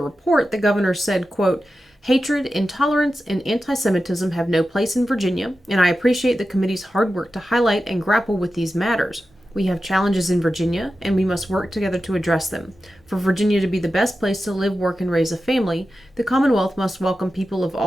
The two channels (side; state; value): both; normal; correlation 0.92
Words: the governor said, quote, "Hatred, intolerance, and anti-Semitism have no place in Virginia, and I appreciate the committee's hard work to highlight and grapple with these matters. We have challenges in Virginia, and we must work together to address them. For Virginia to be the best place to live, work, and raise a family, the Commonwealth must welcome people of